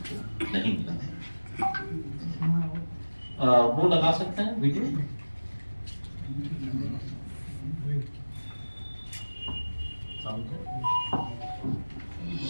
नहीं मिला। वो लगा सकते हैं वीडियो।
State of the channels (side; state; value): both; inverted; correlation -1.00